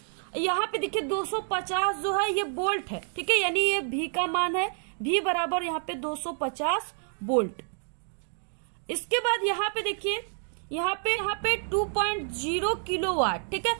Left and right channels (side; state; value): left; silent; 59 dB below the other